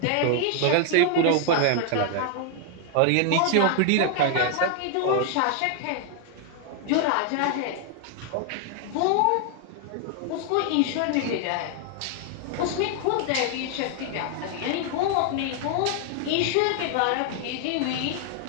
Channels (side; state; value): both; different; correlation 0.00